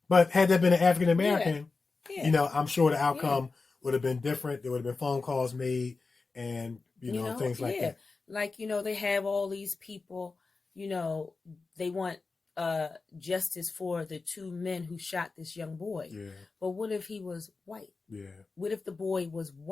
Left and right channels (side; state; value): right; quieter; 4.1 dB